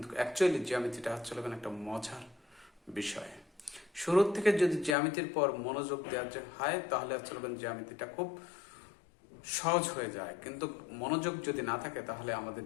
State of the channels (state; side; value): drops out; right; at 5.0 s